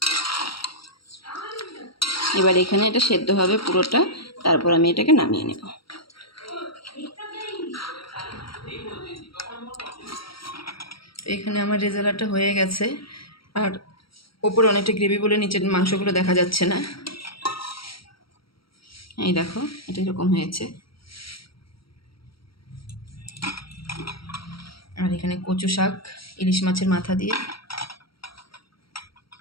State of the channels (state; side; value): late; right; 0.75 ms